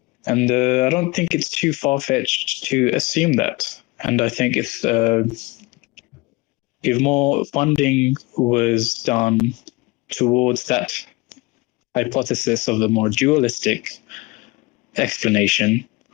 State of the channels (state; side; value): quieter; right; 23.7 dB